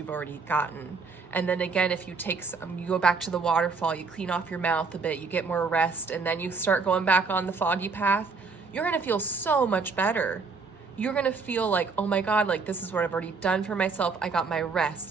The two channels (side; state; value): left; quieter; 4.6 dB